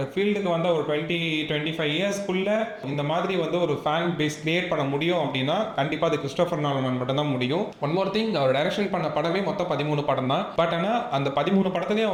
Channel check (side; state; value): both; identical; correlation 1.00